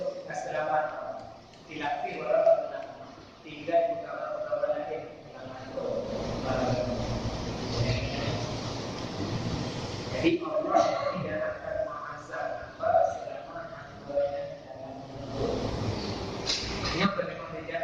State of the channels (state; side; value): identical; both; correlation 1.00